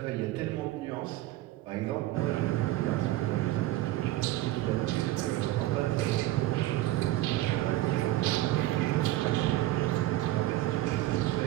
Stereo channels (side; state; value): left; quieter; 15.9 dB